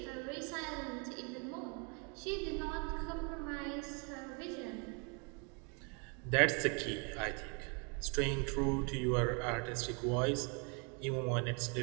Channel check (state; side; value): quieter; left; 35.1 dB